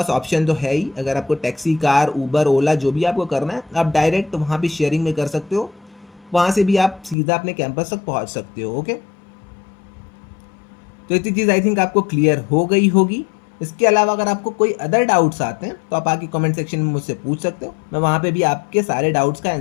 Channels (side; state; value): right; drops out; at 7.2 s